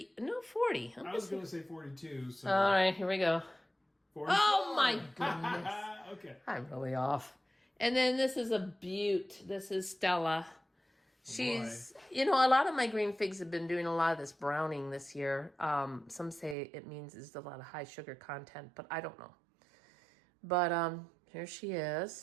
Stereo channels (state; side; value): drops out; left; at 16.6 s